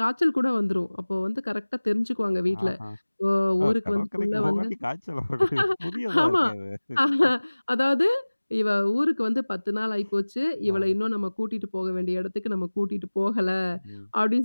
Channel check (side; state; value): both; inverted; correlation -1.00